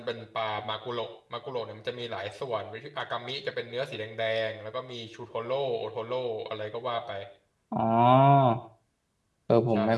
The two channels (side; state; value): both; identical; correlation 1.00